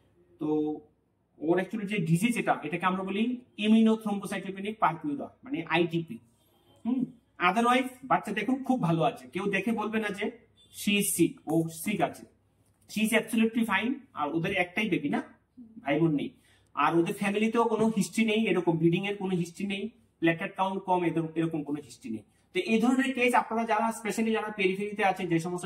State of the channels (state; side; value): identical; both; correlation 1.00